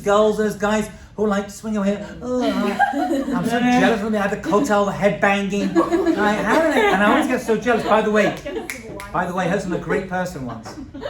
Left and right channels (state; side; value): identical; both; correlation 1.00